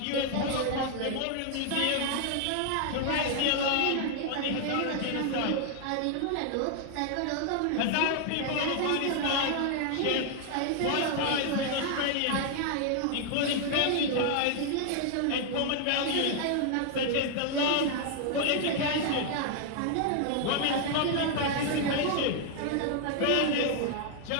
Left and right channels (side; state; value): both; different; correlation 0.00